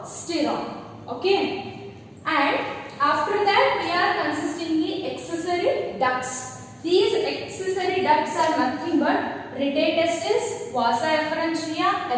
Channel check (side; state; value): both; identical; correlation 1.00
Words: Okay. And after that we are consisting the accessory ducts. These accessory ducts are nothing but rete testis, vasa efferentia,